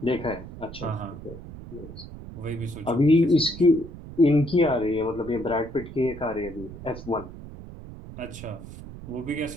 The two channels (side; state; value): right; noise; rumble, 13 dB below the sound